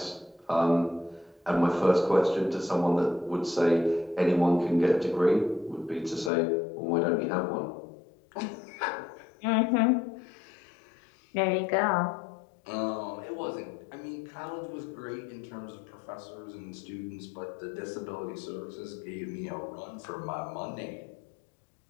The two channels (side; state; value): right; drops out; at 6.3 s